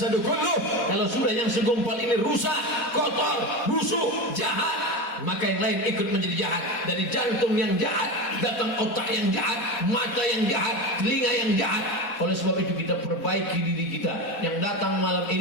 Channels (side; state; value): right; late; 4.2 ms